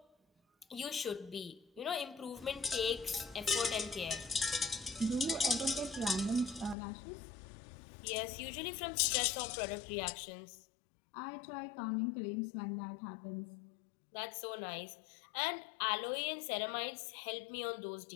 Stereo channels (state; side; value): drops out; right; at 6.8 s